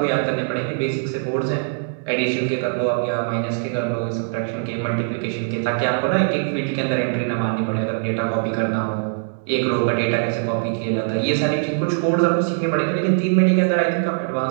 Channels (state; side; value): silent; left; digital silence